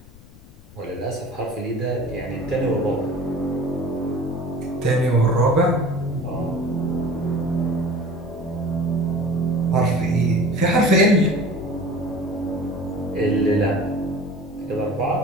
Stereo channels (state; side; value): noise; left; rumble, 22 dB below the sound